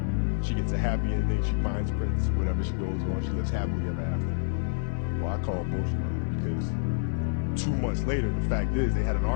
She gets a happy ending. She finds Prince. Whatever she goes on, she lives happily ever after. Well, I call bullshit on it because 2 months later, the fact is they had an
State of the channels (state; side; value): silent; right; 59 dB below the other